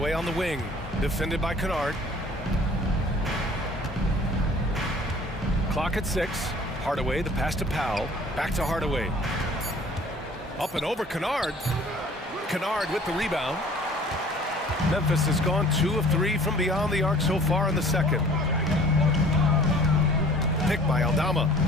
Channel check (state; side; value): normal; both; correlation 0.51